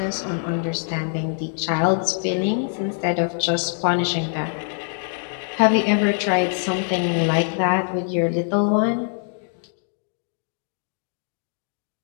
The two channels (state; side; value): silent; right; 63 dB below the other